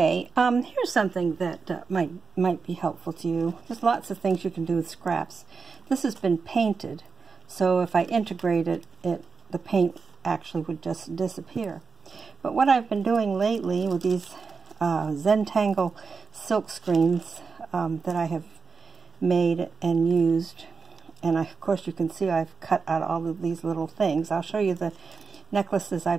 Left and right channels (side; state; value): left; quieter; 5.0 dB